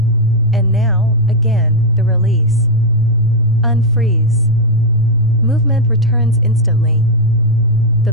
And now, again, the release. Unfreeze. Movement returns instantly.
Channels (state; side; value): noise; right; rumble, 18 dB below the sound